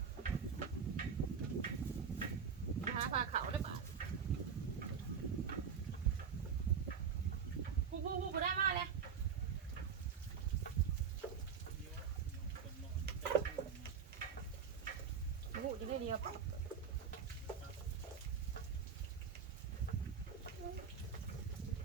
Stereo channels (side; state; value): left; quieter; 6.7 dB